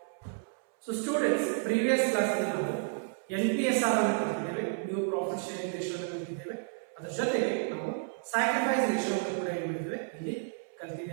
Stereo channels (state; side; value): silent; left; 57 dB below the other